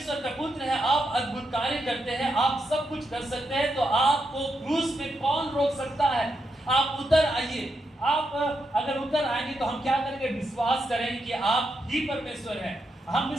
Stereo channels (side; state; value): both; normal; correlation 0.84